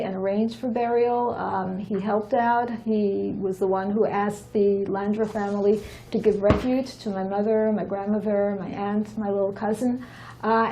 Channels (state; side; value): identical; both; correlation 1.00